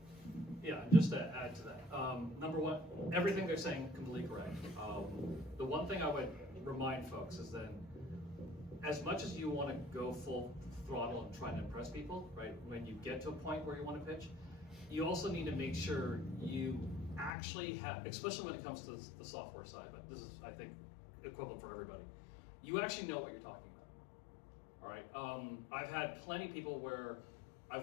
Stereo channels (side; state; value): right; drops out; at 17.3 s